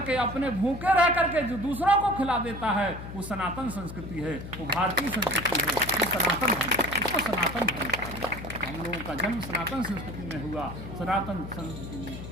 अपने भूखे रह करके जो दूसरों को खिला देता है वो सनातन संस्कृति है, वो भारतीय संस्कृति है, वो सनातन धर्म, उसको सनातन धर्म कहा गया। हम लोगों का जन्म सनातन संस्कृति में हुआ, सनातन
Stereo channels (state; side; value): noise; left; hum, 10 dB below the sound